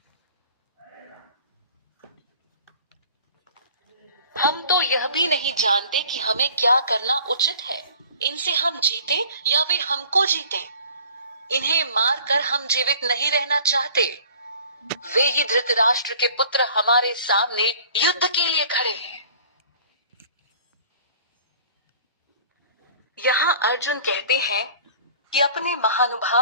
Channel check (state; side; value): inverted; both; correlation -0.48